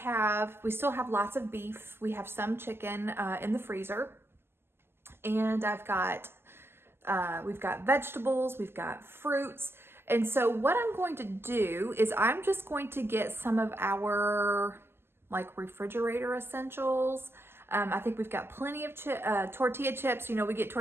still have lots of beef. We have some chicken in the freezer, and we've got vegetables, we've got fruits. And so what I'm going to do is I'm just going to get some of our like refrigerator essentials. I think we've got plenty of tortilla chips. You know, we get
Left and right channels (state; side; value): late; left; 0.12 ms